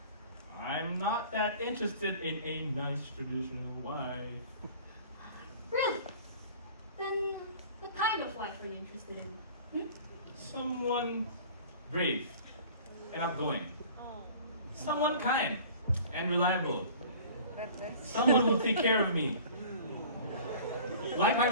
I'm not that interested in a nice traditional wife. Really? Then what kind of wife are you interested in? Someone brave and outgoing. Someone kind and reliable. Someone who'll take care of me. Like my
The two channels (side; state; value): both; inverted; correlation -0.44